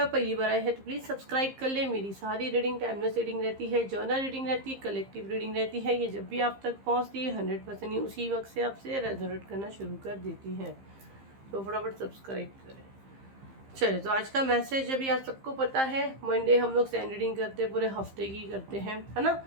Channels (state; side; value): late; left; 15 ms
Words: आप पहली बार आए हैं तो प्लीज़ सब्सक्राइब कर ले। मेरी सारी रीडिंग टाइमलेस रीडिंग रहती है, जर्नल रीडिंग रहती है, कलेक्टिव रीडिंग रहती है। ये जब भी आप तक पहुँचती है 100% ही उसी वक्त से आपसे रेजोनेट करना शुरू कर देती है। तो फटाफट सब्सक्राइब करें। चलिए, तो आज का मैसेज अभी आज सबको पता है, मंडे हम लोग सैंड रीडिंग करते हैं, पूरे हफ्ते की करते हैं, है ना।